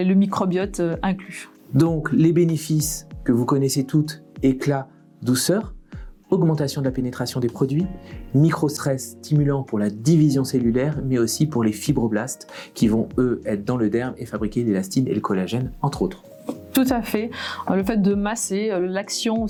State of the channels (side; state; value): both; identical; correlation 1.00